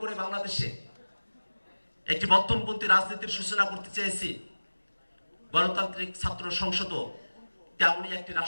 বাংলাদেশে একটি মধ্যমপন্থী রাজনীতির সূচনা করতে চেয়েছি, গণতান্ত্রিক ছাত্র সংসদ তেমনই একটি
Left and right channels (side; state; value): both; inverted; correlation -1.00